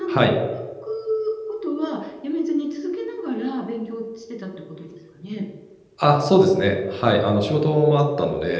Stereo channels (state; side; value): identical; both; correlation 1.00